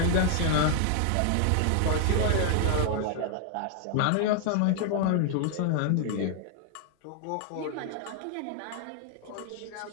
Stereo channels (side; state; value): both; different; correlation 0.00